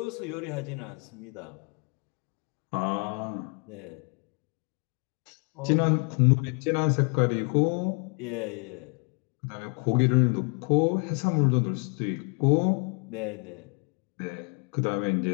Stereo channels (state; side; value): quieter; right; 35.7 dB